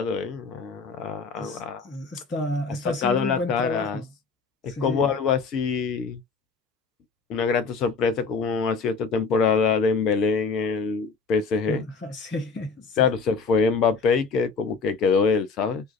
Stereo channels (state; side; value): quieter; right; 4.8 dB